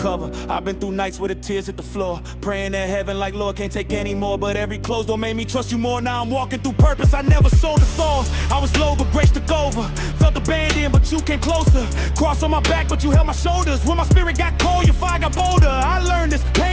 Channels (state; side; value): identical; both; correlation 1.00